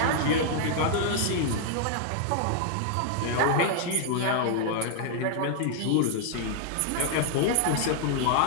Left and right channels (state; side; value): different; both; correlation 0.00